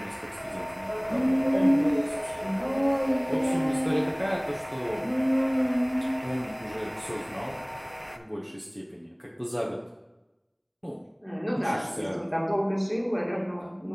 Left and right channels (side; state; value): both; identical; correlation 1.00